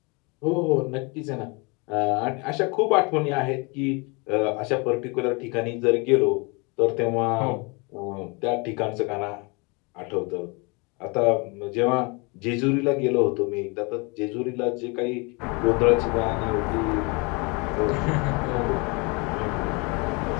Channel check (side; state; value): right; quieter; 29.9 dB